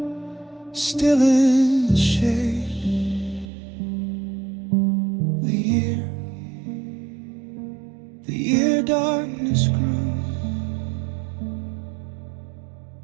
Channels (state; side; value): drops out; left; at 3.5 s